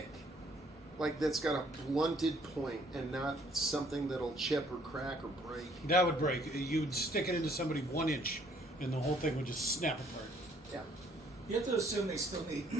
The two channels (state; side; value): normal; both; correlation 0.63